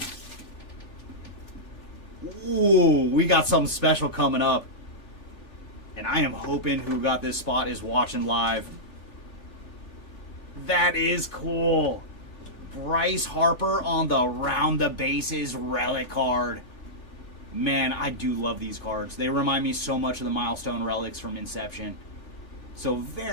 Ooh, we got something special coming up. And I am hoping who got this spot is watching live. That is cool. Bryce Harper on the round the bases relic card. Man, I do love these cards. They remind me so much of the Milestone relics from Inception. So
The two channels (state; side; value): late; right; 3.4 ms